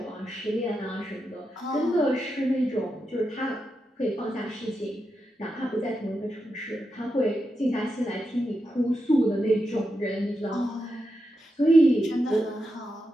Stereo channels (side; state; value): both; normal; correlation 0.87